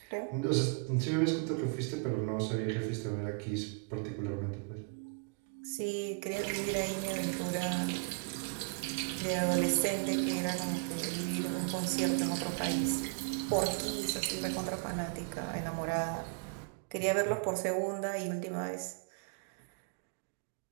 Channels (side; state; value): left; quieter; 36.1 dB